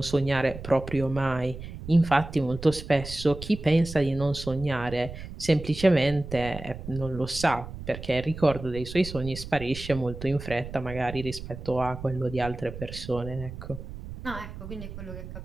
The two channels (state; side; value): noise; right; rumble, 11 dB below the sound